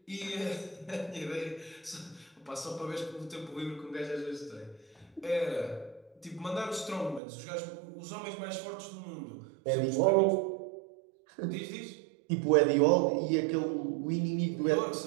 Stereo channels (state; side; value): drops out; left; at 7.2 s